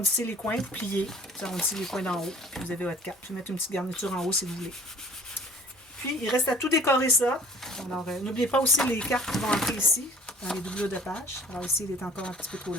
les coins, vous pliez. Vous arrondissez les coins d'en haut. Puis vous avez votre carte. Vous mettez une petite garniture en haut si vous voulez. Puis, il reste à tout décorer ça. Alors, n'oubliez pas aussi les cartes qui vont entrer ici, dans les doublures de page. Alors ici, il est encore un petit peu trop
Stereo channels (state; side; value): normal; both; correlation 0.50